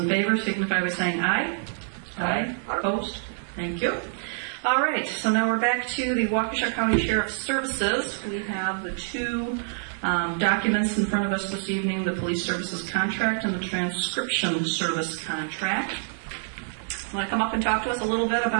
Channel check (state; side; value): silent; left; digital silence